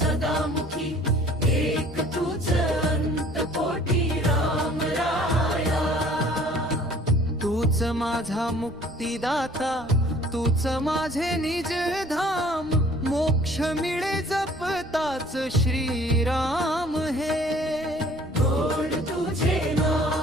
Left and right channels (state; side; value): noise; left; rumble, 22 dB below the sound